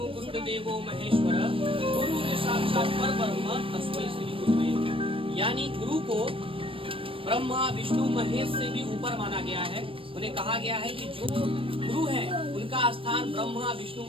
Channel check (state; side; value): late; left; 0.26 ms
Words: गुरुर देवो महेश्वर गुरुर साक्षात परब्रह्म तस्मै श्री गुरुवे। यानी गुरु को ब्रह्मा विष्णु महेश से भी ऊपर माना गया है। उन्हें कहा गया है कि जो गुरु है उनका स्थान ब्रह्मा विष्णु